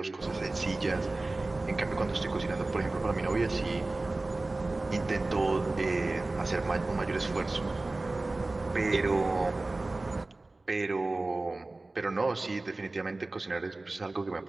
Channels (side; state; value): left; quieter; 3.1 dB